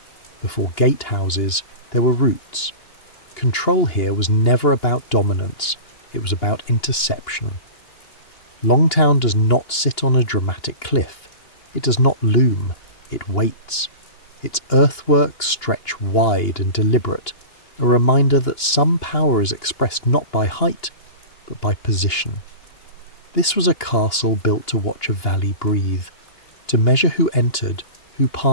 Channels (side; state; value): right; late; 2.8 ms